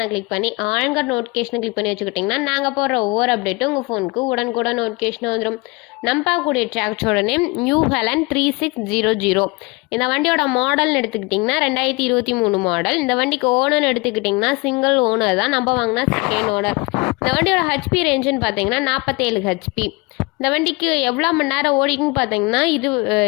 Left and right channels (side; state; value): right; quieter; 26.1 dB